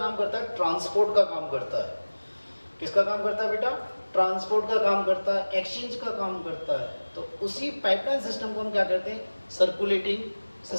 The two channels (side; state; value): both; inverted; correlation -1.00